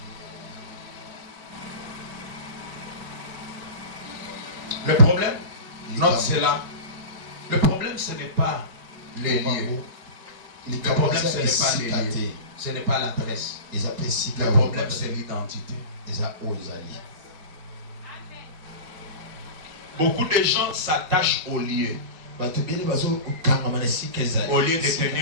Le problème, note cela. Le problème, ce n'est pas les lieux. Le problème, ce n'est pas les lieux. Ce n'est pas l'adresse. Le problème, c'est l'identité. Beaucoup de gens s'attachent aux lieux au lieu de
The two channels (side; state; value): left; late; 4.7 ms